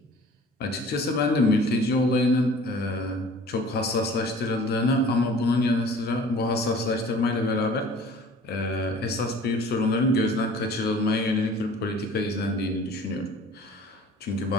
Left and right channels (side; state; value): both; normal; correlation 0.48